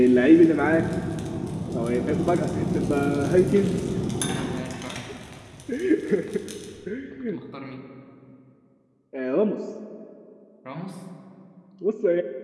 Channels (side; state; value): both; identical; correlation 1.00